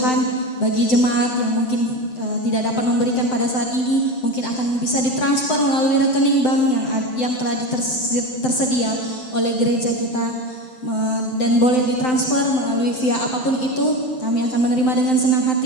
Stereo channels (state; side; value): late; right; 7.8 ms